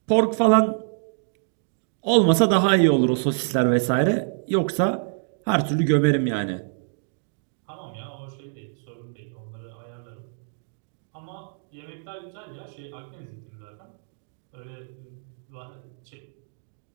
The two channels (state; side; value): silent; left; digital silence